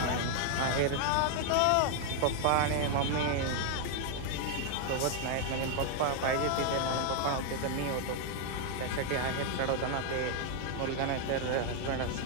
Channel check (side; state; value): both; different; correlation 0.00